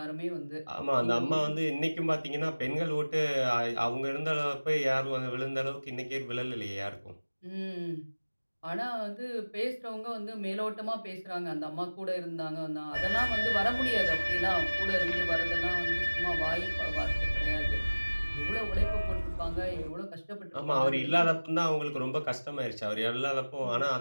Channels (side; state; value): both; inverted; correlation -1.00